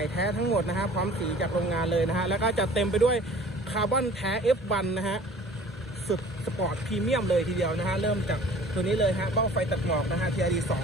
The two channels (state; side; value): normal; both; correlation 0.48